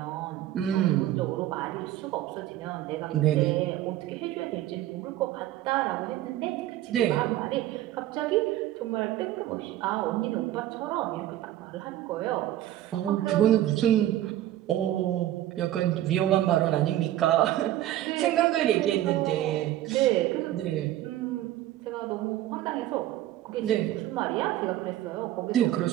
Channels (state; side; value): quieter; left; 13.7 dB